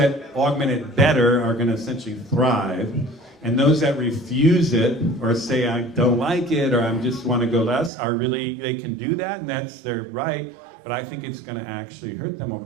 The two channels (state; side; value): drops out; left; at 7.9 s